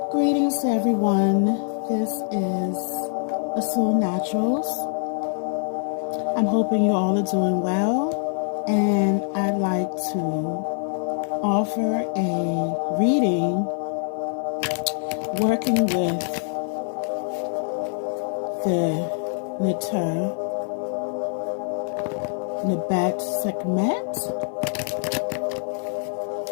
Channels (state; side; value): silent; right; digital silence